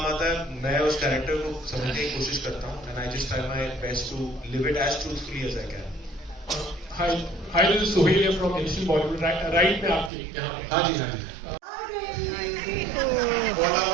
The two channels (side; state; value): left; drops out; at 10.1 s